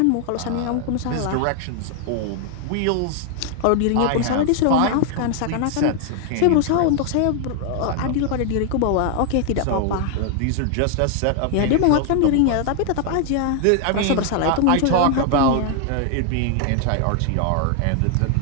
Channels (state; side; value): different; both; correlation 0.00